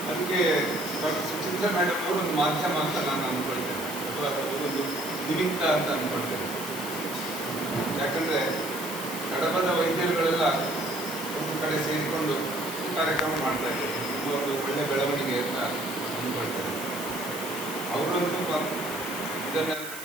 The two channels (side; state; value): right; noise; hiss, 10 dB below the sound